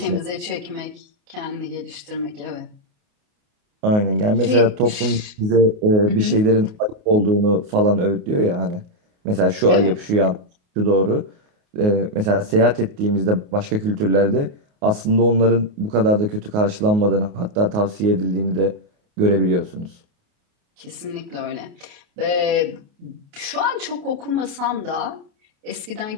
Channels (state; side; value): late; left; 28 ms